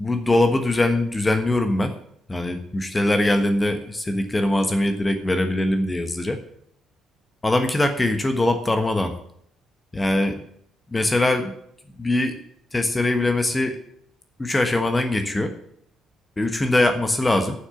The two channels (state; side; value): normal; both; correlation 0.92